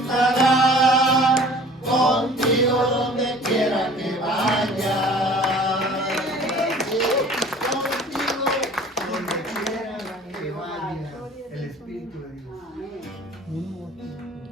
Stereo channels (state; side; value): normal; both; correlation 0.47